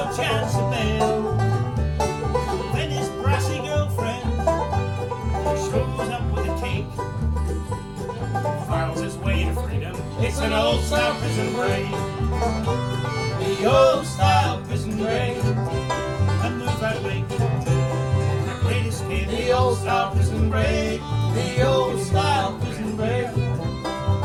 chance of bail. Then his brassy girlfriend shows up with a cake, files his way to freedom. It's an old style prison break, the old style prison break. And move out late, the great escape, the old style prison break, the old style prison break.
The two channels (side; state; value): both; identical; correlation 1.00